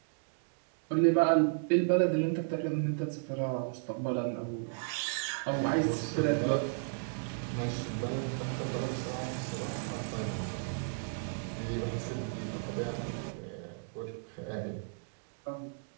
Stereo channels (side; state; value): left; silent; digital silence